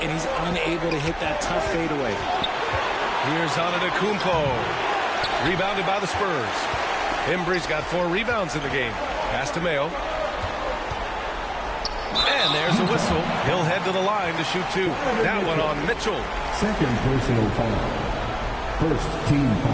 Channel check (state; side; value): identical; both; correlation 1.00